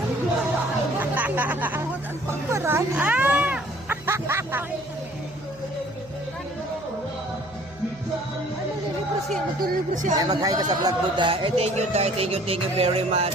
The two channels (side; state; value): right; noise; hum, 23 dB below the sound